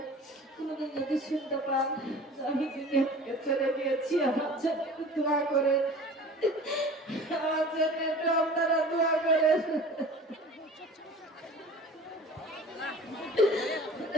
কোনোদিন যদি শুনতে পান আমি দুনিয়া থেকে চলে গিয়েছি, আমার জন্য দোয়া করেন, আমার জন্য আপনারা দোয়া করেন।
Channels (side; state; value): both; normal; correlation 0.42